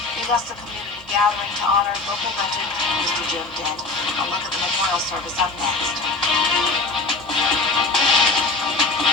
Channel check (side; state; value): right; quieter; 3.7 dB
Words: the Augusta Community Gathering to honor local legend Mr. Jim Dent. A look at the memorial service up next.